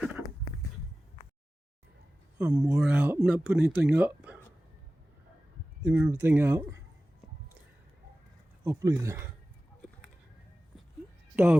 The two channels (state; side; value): normal; both; correlation 0.96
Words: I'm wore out. I'm not putting anything up. Leaving everything out. Hopefully the